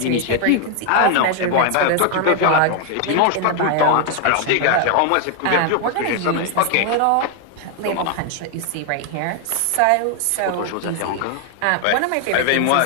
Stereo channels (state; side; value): different; both; correlation 0.00